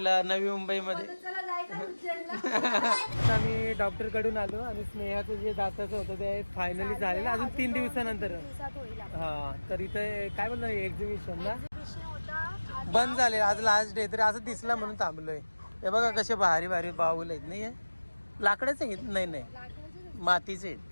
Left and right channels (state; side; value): inverted; both; correlation -1.00